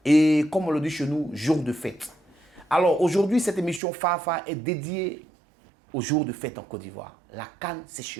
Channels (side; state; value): left; drops out; at 3.8 s